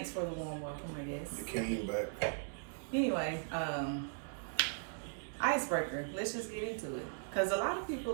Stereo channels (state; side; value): silent; left; digital silence